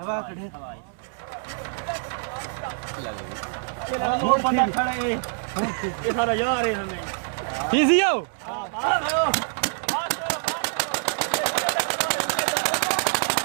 कढ़े वो बंदा खड़ा है ये सारा यार है हमें पीसीओ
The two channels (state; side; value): silent; left; 61 dB below the other